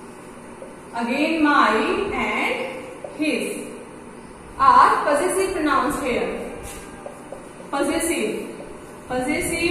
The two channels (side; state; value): both; identical; correlation 1.00